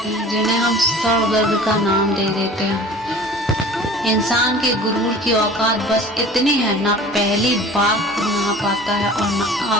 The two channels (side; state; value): both; normal; correlation 0.43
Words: हैं जिन्हें हम सर दर्द का नाम दे देते हैं। इंसान के गुरूर की औकात बस इतनी है, ना पहली बार खुद नहा पाता है और ना